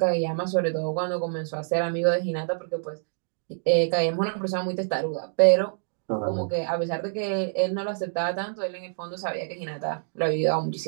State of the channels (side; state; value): left; silent; 60 dB below the other